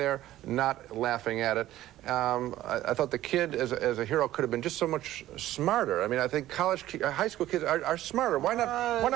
not laughing at it. I thought the kid as a hero could have been just so much smarter. I mean, I think high school kids are smarter. Why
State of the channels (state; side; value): quieter; left; 14.3 dB